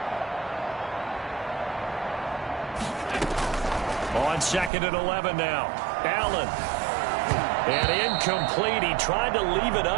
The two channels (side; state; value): left; drops out; at 4.7 s